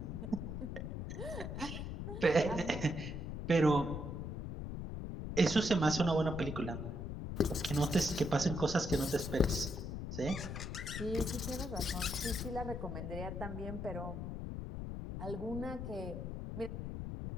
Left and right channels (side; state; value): left; noise; rumble, 5 dB below the sound